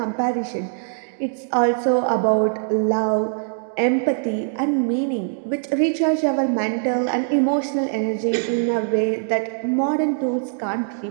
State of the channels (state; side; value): silent; left; digital silence